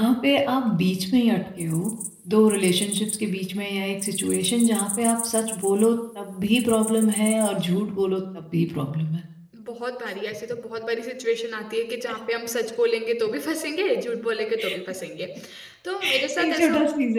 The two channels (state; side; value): identical; both; correlation 1.00